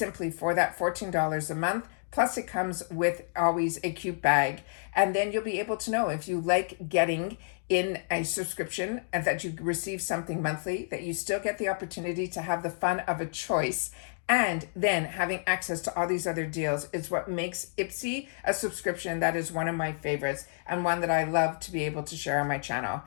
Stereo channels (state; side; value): silent; right; digital silence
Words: for that $14 a month. Plus it comes with always a cute bag. And then you'll be able to know if you like getting in a subscription and that you receive something monthly, that you still get the opportunity to have the fun of a choice. And then having access to all these other deals is what makes Ipsy a subscription that is one of my favorites, and one that I love to be able to share on my channel.